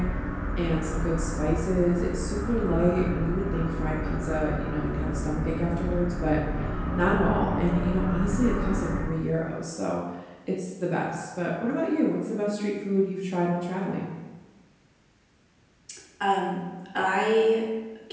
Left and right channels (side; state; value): both; identical; correlation 1.00